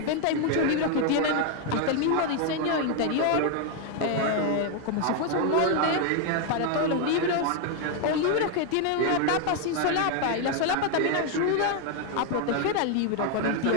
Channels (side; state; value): both; different; correlation 0.01